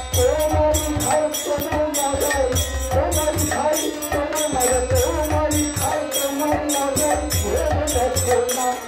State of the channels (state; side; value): identical; both; correlation 1.00